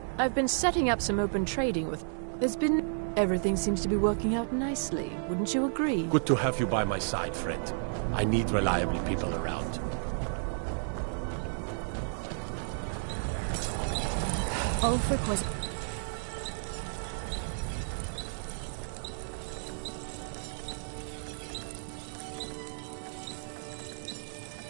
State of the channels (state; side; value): silent; left; digital silence